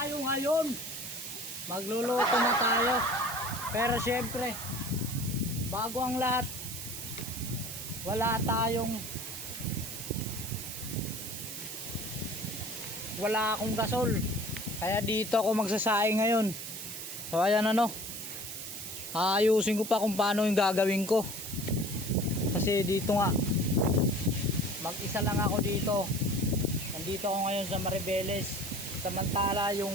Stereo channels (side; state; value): right; noise; hiss, 8 dB below the sound